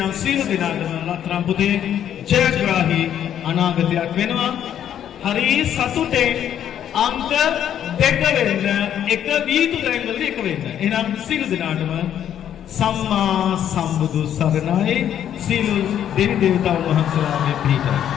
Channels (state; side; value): quieter; right; 10.1 dB